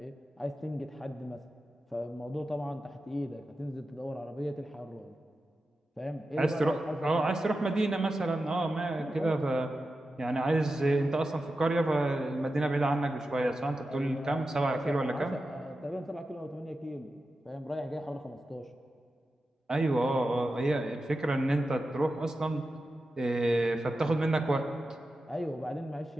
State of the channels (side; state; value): both; normal; correlation 0.91